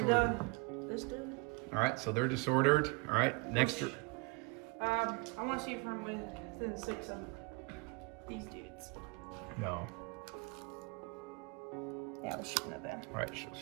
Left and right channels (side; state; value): left; quieter; 29.3 dB